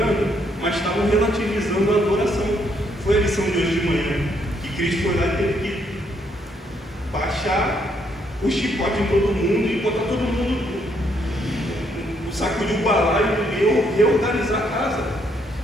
mas estavam relativizando a adoração. Foi a lição de hoje de manhã, que Cristo foi lá e teve que baixar o chicote em todo mundo e botar todo mundo, sacudir o balaio e reorganizar a casa.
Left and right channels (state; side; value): normal; both; correlation 0.72